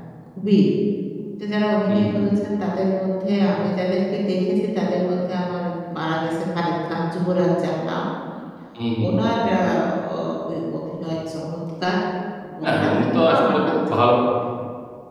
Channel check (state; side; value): identical; both; correlation 1.00